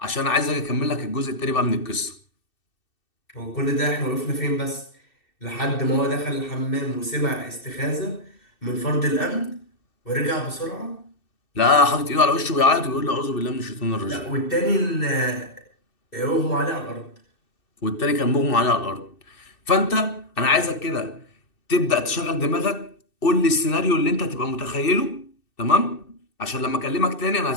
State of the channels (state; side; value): late; right; 2.6 ms